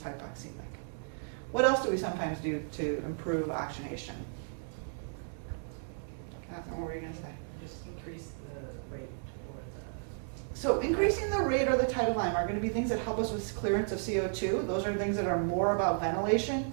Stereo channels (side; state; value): left; silent; 55 dB below the other